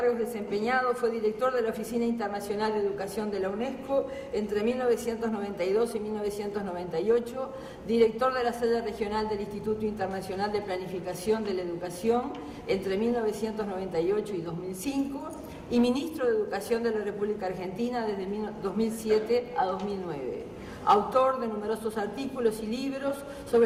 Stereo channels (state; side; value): identical; both; correlation 1.00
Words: desempeñados, fue director de la Oficina Internacional de Educación de la UNESCO entre 1992 y 1998, director de la sede regional del Instituto Internacional de Planificación de la Educación entre 1998 y 2005 y ministro de Educación de la República Argentina desde 2007 a 2009. Autor de numerosos artículos y libros